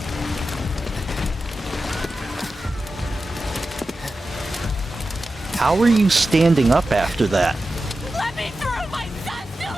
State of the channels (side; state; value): both; normal; correlation 0.93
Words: How are you standing up after that? Let me through! My son's still